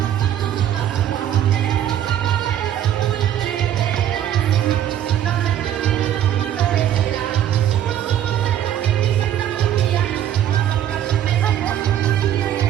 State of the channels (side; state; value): left; quieter; 10.8 dB